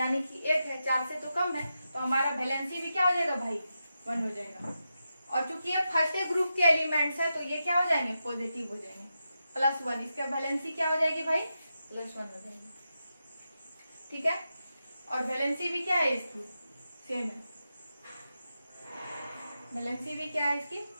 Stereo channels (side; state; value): both; inverted; correlation -0.88